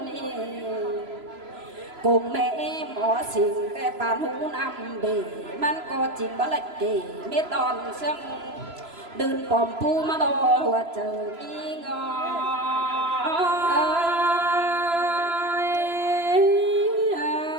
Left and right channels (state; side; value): late; left; 3.0 ms